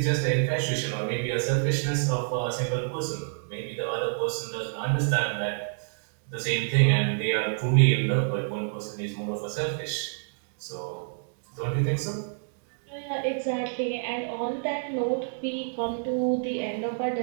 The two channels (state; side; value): silent; left; digital silence